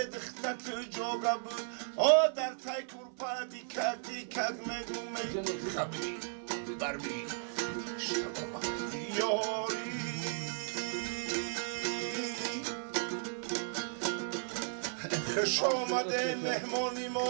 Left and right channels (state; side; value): silent; left; 54 dB below the other